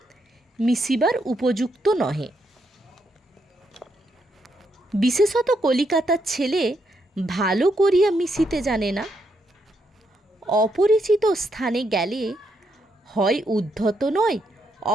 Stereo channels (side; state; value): both; normal; correlation 0.78